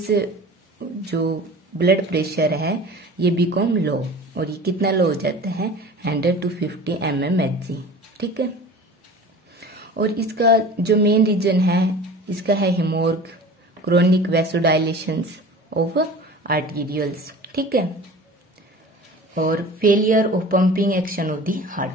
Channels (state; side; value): normal; both; correlation 0.40